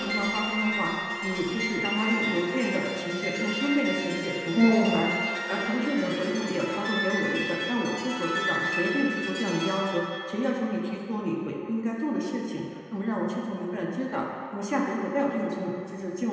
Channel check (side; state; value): both; identical; correlation 1.00